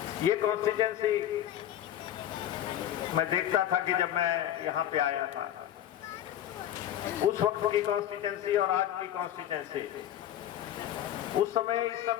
ये कॉन्स्टिट्यूंसी मैं देखता था कि जब मैं यहां पे आया था, उस वक्त की कॉन्स्टिट्यूंसी और आज की कॉन्स्टिट्यूंसी, उस समय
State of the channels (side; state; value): right; quieter; 11.6 dB